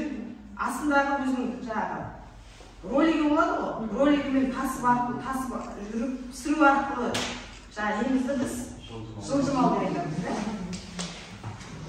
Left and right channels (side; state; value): both; identical; correlation 1.00